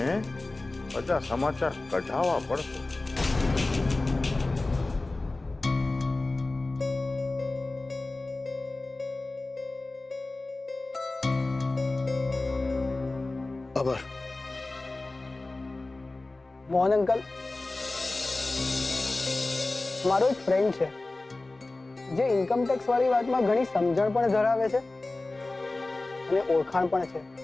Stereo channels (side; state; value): right; quieter; 3.1 dB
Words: બધા સમાચાર કઢાવવા પડશે. ખબર મોહન અંકલ, મારો એક ફ્રેન્ડ છે જે ઇન્કમ ટેક્સ વાળી વાતમાં ઘણી સમજણ પણ ધરાવે છે અને ઓળખાણ પણ છે.